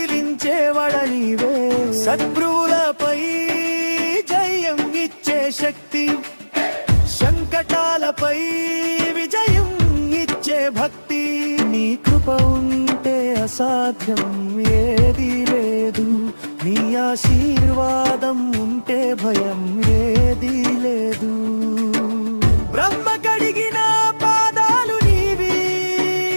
నీవే. శత్రువులపై జయం ఇచ్చే శక్తి, సంకటాలపై విజయం ఇచ్చే భక్తి. నీ కృప ఉంటే అసాధ్యం ఏది లేదు, నీ ఆశీర్వాదం ఉంటే భయం ఏది లేదు. బ్రహ్మ కడిగిన పాదాలు నీవి,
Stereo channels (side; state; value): both; inverted; correlation -1.00